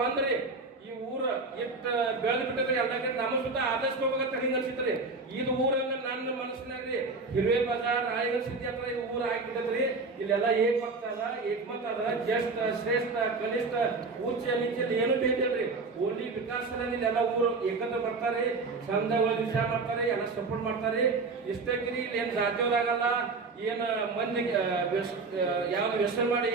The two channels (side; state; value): left; quieter; 3.9 dB